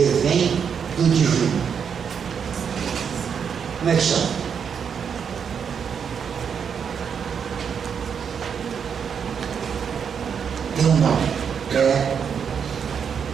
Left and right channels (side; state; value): left; quieter; 7.1 dB